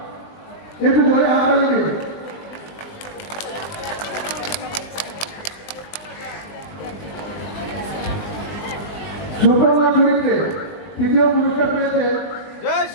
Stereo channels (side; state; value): right; late; 20 ms